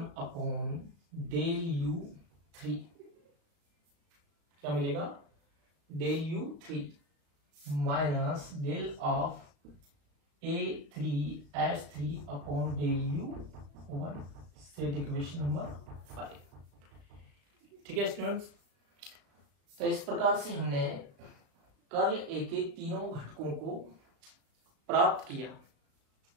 upon del U3, क्या मिलेगा, del U3 minus del of A3H3 upon del U1, set equation number 5। ठीक है स्टूडेंट्स, तो इस प्रकार से हमने कर्ल A के तीनों घटकों को प्राप्त किया।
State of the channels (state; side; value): late; left; 35 ms